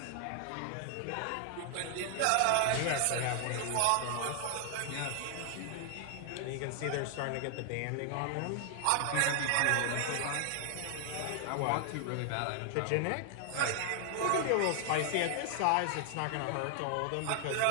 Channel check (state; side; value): different; both; correlation 0.00